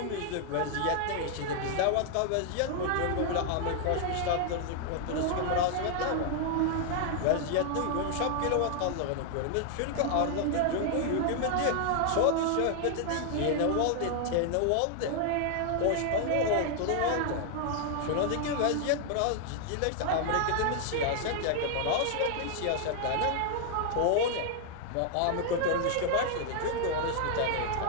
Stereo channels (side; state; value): both; different; correlation 0.00